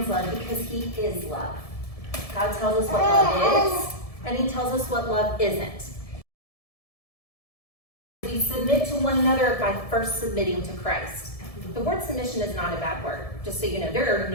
love because he is love. God tells us what love is, and he tells us what love isn't. We submit to one another by first submitting to Christ. The word submission is not a bad word. Just so you know, there are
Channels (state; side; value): late; right; 1.7 ms